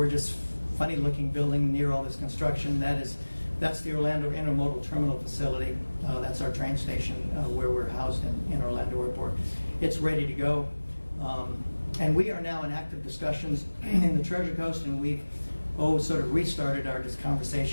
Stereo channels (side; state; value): both; inverted; correlation -1.00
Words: funny-looking building near all this construction, that's the Orlando Intermodal Terminal Facility. That's our train station where we're housed in Orlando Airport. It's ready to go. And we are now in active discussions in the Treasure Coast, and we've sort of restarted our